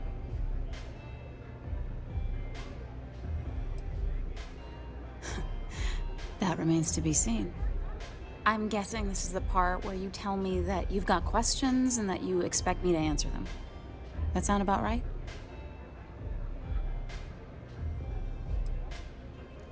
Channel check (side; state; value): both; identical; correlation 1.00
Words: That remains to be seen. I'm guessing this is the part where you tell me that you've got questions and that you expect me to answer them. That sound about right?